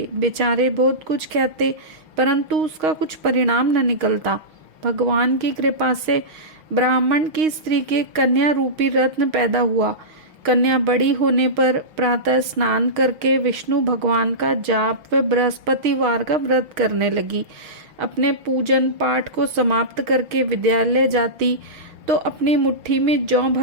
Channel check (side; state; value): left; late; 6.4 ms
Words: बेचारे बहुत कुछ कहते, परंतु उसका कुछ परिणाम न निकलता। भगवान की कृपा से ब्राह्मण की स्त्री के कन्या रूपी रत्न पैदा हुआ। कन्या बड़ी होने पर प्रातः स्नान करके विष्णु भगवान का जाप व बृहस्पतिवार का व्रत करने लगी। अपने पूजन पाठ को समाप्त करके विद्यालय जाती तो अपनी मुट्ठी में जौ